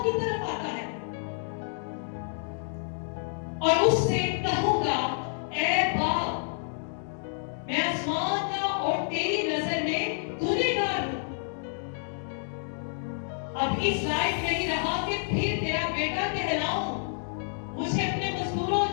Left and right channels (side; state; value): right; silent; digital silence